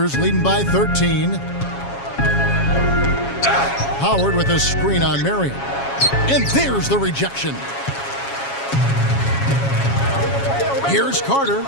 leading by 13. Howard with a screen on Marion. And there's the rejection. Here's Carter.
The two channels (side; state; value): right; late; 7.3 ms